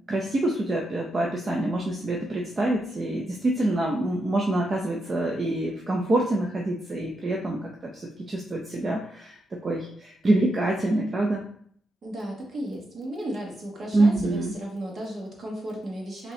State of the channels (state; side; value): normal; both; correlation 0.85